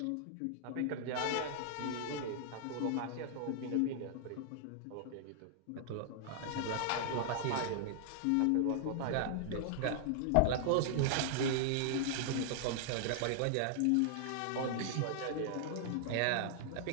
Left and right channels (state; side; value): different; both; correlation -0.01